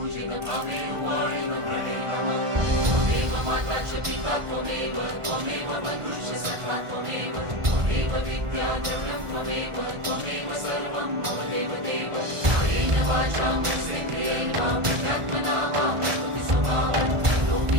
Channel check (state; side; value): late; left; 1.5 ms